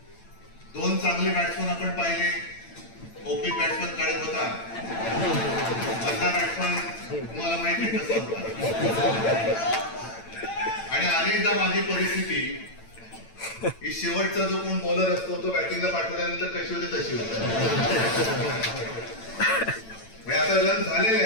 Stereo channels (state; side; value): late; right; 8.9 ms